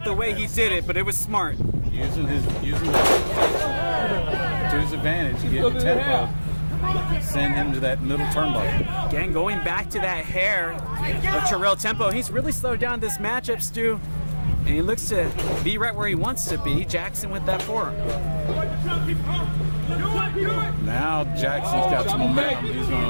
the way he did it, but it was smart. Using that to his advantage, getting Tempo. Send him to that middle turnbuckle. Again, going back to that hair of Terrell Tempo. He's really slowed down this matchup, Stu. And he looks to be right where he wants to be. Jackson with that forearm. Now Jackson's got some momentum. He's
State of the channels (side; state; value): both; inverted; correlation -1.00